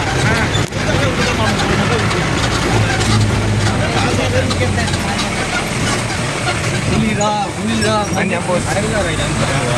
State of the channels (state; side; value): identical; both; correlation 1.00